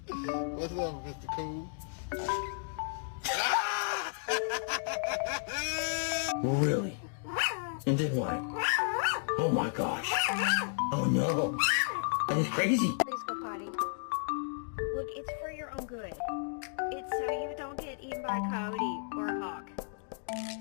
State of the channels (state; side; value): silent; right; digital silence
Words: What's up, Mr. Cool? Really? And then what? Oh my gosh. Oh no. That is crazy. Please go potty. Look, it's for your own good. It's so you don't get eaten by a coyote or a hawk.